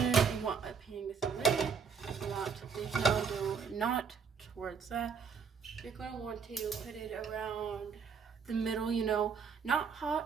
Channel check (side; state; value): left; quieter; 6.1 dB